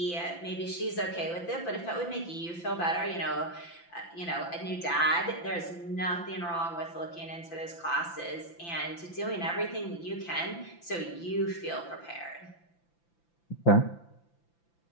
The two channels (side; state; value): right; late; 5.9 ms